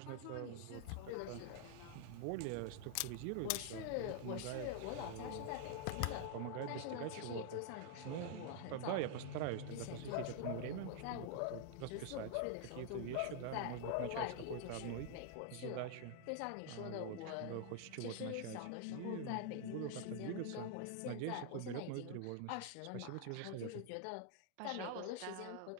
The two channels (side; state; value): both; different; correlation 0.00